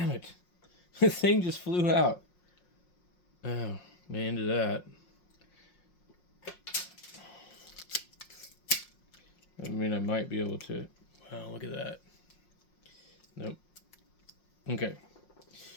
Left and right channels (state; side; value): late; right; 5.6 ms